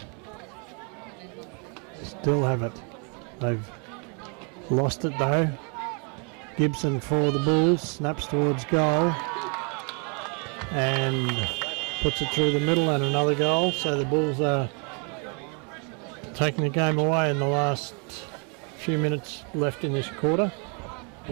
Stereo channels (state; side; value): quieter; left; 38.2 dB